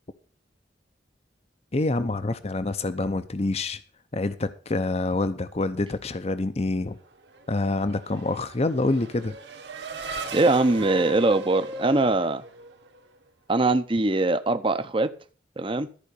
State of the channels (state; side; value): normal; both; correlation 0.54